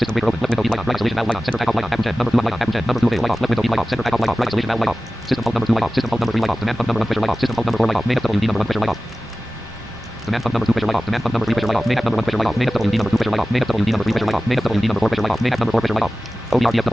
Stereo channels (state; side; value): normal; both; correlation 0.96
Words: breaker open. Left window light on. Right isolation valve light on. Center takeoff light on. Apple 10 number 2 light on. Apple 10 number 2 light off. Left window light off. Center takeoff light off. Right isolation valve light off. System pump number 2 light off. System pump number 3 light off. Demand pump number 1 pressure light off. System pump number 4 light off. Main FWD number 1 pressure light off. Demand pump number 2 pressure light off. Demand pump number 3 pressure light off. Main number 1 pressure light off. Main FWD number 2 pressure light off. Main FWD number 3 pressure light off. Main FWD number 4 pressure light off. Main number 4 pressure light off.